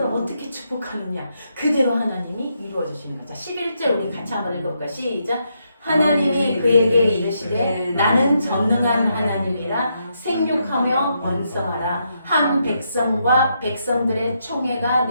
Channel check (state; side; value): inverted; both; correlation -0.79